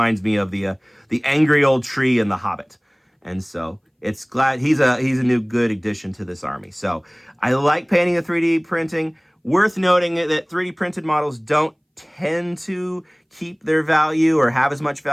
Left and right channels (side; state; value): both; identical; correlation 1.00